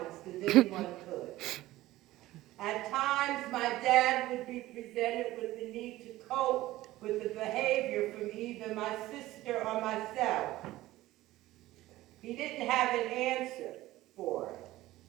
as anyone could. At times, my dad would be presented with the need to cope with the behavior from either my sister or myself. He didn't have an answer for it.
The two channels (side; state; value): left; quieter; 16.6 dB